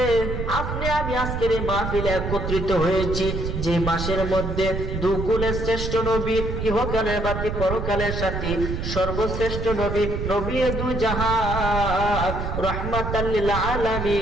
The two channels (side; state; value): right; noise; rumble, 4 dB below the sound